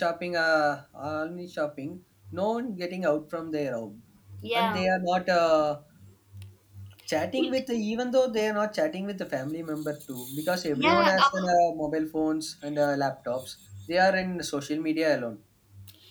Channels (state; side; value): identical; both; correlation 1.00